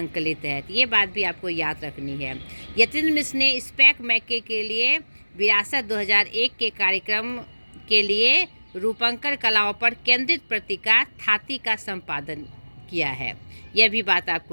है। तो ये बात भी आपको याद रखनी है। यतीन्द्र मिश्र ने स्पैक मैके के लिए विरासत 2001 के कार्यक्रम के लिए रूपंकर कलाओं पर केंद्रित पत्रिका थाती का संपादन किया है। यह भी बात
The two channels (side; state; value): both; inverted; correlation -1.00